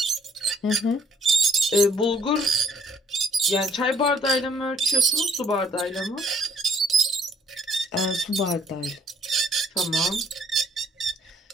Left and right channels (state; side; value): normal; both; correlation 0.63